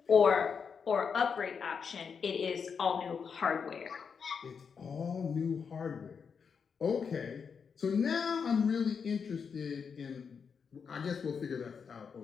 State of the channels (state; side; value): quieter; right; 6.2 dB